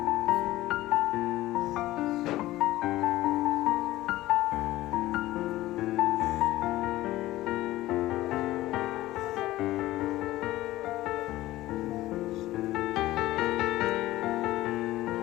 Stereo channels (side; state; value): right; quieter; 16.5 dB